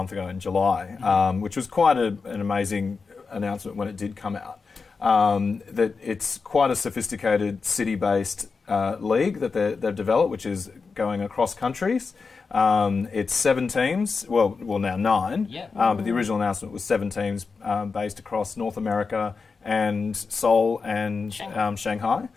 ago in July, which was quite an amazing announcement when it did come out. That it's quite a sophisticated city-based league that they've developed, which is going across countries. It's 7 teams, well now 9, Yep. but the original announcement was 7 teams based across North America and Seoul and Shanghai.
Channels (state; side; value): quieter; right; 4.8 dB